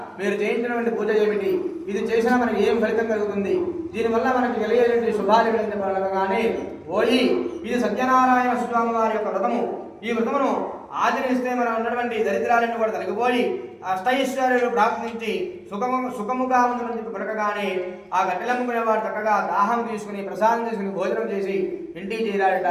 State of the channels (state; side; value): identical; both; correlation 1.00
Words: మీరు చేయించినటువంటి పూజ ఏమిటి? ఇది చేసినా మనకి ఏం ఫలితం కలుగుతుంది? దీనివల్ల మనకి కలిగేటువంటి శుభాలు కానీ ఓయి, ఇది సత్యనారాయణ స్వామి వారి యొక్క వ్రతము. ఈ వ్రతమును ఆచరిస్తే మనం ఉన్నటువంటి దరిద్రాలన్నీ కూడా తొలగిపోయి అష్టైశ్వర్యాలు ప్రాప్తించి సుఖముగా ఉందని చెప్పి పలకగానే ఆ గట్టెలమ్ముకునే వాడు చక్కగా దాహం తీసుకుని ప్రసాదం తీసుకుని భోజనం చేసి ఇంటికి చేరాడట.